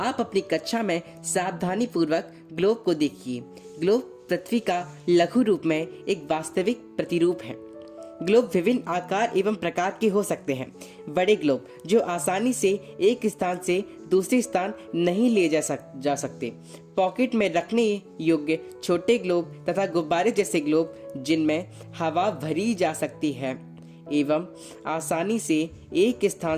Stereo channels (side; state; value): both; identical; correlation 1.00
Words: अपनी कक्षा में सावधानी पूर्वक ग्लोब को देखिए। ग्लोब पृथ्वी का लघु रूप में एक वास्तविक प्रतिरूप है। ग्लोब विभिन्न आकार एवं प्रकार के हो सकते हैं। बड़े ग्लोब जो आसानी से एक स्थान से दूसरे स्थान नहीं ले जा सकते, पॉकेट में रखने योग्य छोटे ग्लोब तथा गुब्बारे जैसे ग्लोब जिनमें हवा भरी जा सकती है एवं आसानी से एक